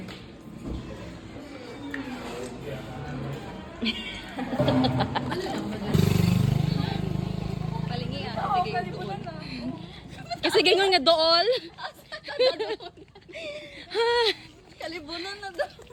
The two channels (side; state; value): both; identical; correlation 1.00